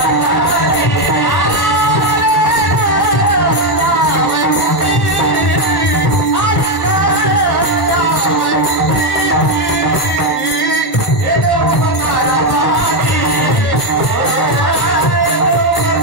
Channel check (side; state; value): right; late; 1.1 ms